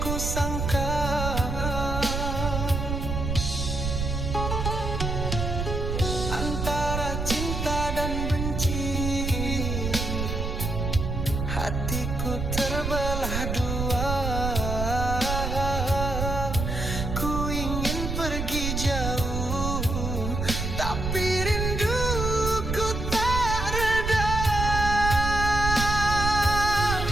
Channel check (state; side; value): noise; right; rumble, 2 dB below the sound